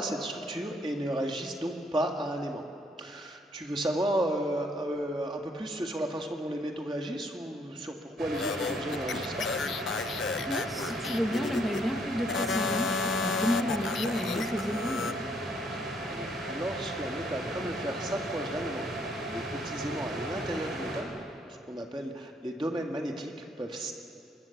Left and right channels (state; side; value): normal; both; correlation 0.68